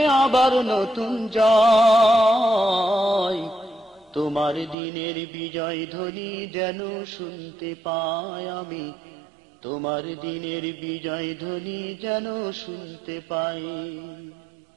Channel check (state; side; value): drops out; left; at 4.8 s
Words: আবার নতুন জয়, তোমার দিনের বিজয় ধ্বনি যেন শুনতে পাই আমি, তোমার দিনের বিজয় ধ্বনি যেন শুনতে পাই।